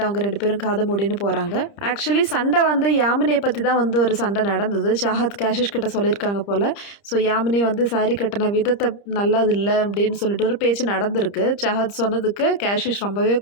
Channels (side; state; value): right; late; 30 ms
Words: அவங்க ரெண்டு பேரும் காதை மூடின்னு போகிறாங்க. ஆக்சுவலி சண்டை வந்து யாமினியை பற்றி தான் வந்து ஒரு சண்டை நடந்தது. சாஹத் கேஷிஷ் கிட்ட சொல்லியிருக்காங்க போல். ஸோ யாமினி வந்து சாரி கட்டின விதத்தை நல்லது இல்லை அப்படின்னு சொல்லிட்டு ஒரு பேச்சு நடந்திருக்கு. சாஹத் சொன்னதுக்கு கேஷிஷ் ரொம்பவே